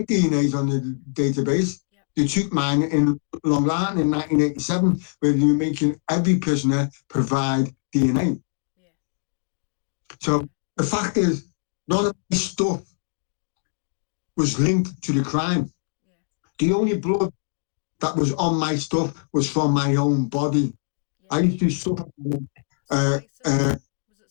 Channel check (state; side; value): silent; right; digital silence